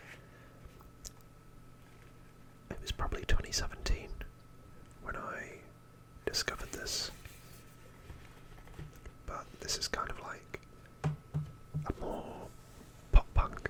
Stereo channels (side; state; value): both; identical; correlation 1.00